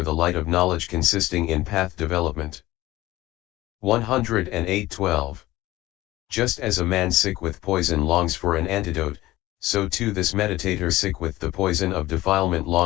the light of knowledge consisting in path development. 108:12. Just as a man sick with poison longs for an antidote, so too this meditator sick with the poison of defilement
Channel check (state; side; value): quieter; right; 17.3 dB